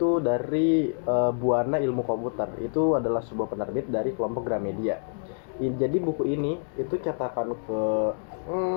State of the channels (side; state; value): right; silent; 60 dB below the other